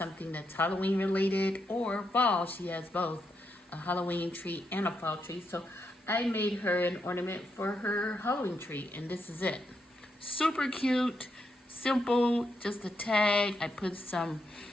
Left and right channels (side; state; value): both; normal; correlation 0.82